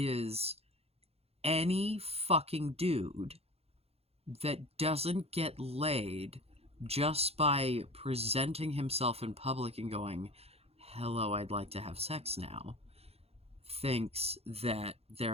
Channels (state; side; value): late; left; 0.29 ms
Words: any fucking dude that doesn't get laid just by presenting himself in public and going, hello, I'd like to have sex now, thinks that